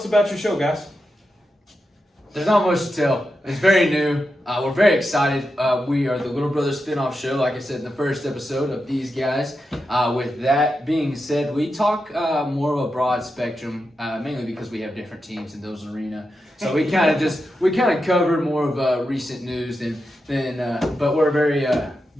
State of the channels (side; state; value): both; normal; correlation 0.88